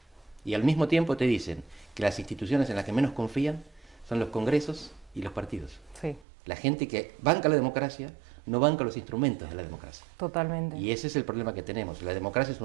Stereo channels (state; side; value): drops out; left; at 6.2 s